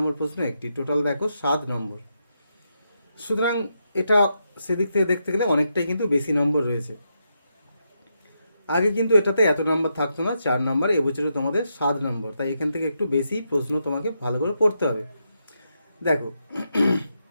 প্রশ্ন একটি, টোটাল দেখো 7 নম্বর। সুতরাং এটা সেদিক থেকে দেখতে গেলে অনেকটাই কিন্তু বেশি নম্বর রয়েছে। আগে কিন্তু এটাতে এত নাম্বার থাকতো না, 4 নাম্বার, এবছরে তোমাদের 7 নম্বর, তাই এখান থেকে একটু বেশি প্রশ্ন তোমাকে ভালো করে পড়তে হবে। দেখো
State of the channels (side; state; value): both; inverted; correlation -0.83